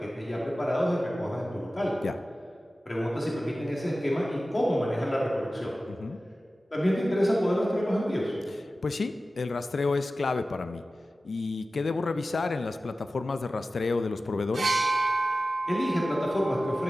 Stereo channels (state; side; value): normal; both; correlation 0.95